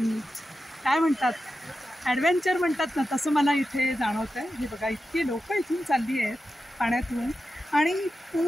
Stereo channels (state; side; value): normal; both; correlation 0.91